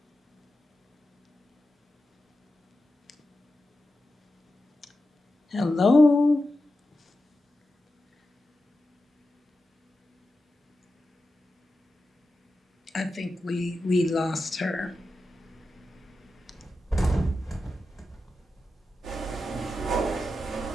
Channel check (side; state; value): both; normal; correlation 0.91